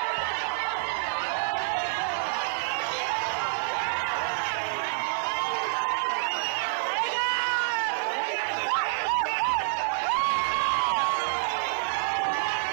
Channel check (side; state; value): left; silent; 60 dB below the other